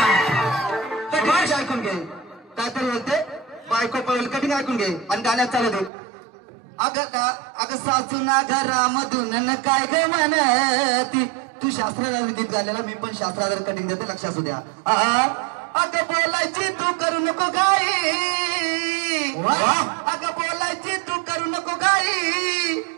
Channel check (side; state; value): left; drops out; at 5.9 s